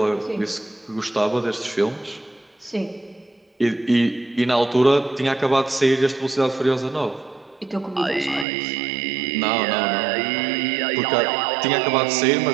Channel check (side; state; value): left; drops out; at 8.5 s